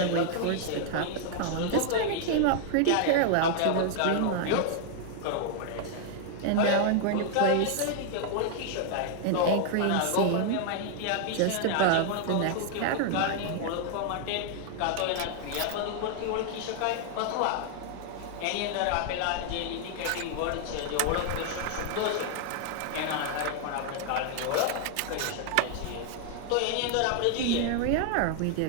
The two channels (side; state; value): both; different; correlation 0.00